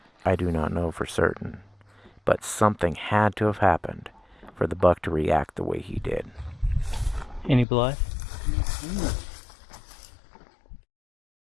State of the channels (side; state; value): right; drops out; at 7.7 s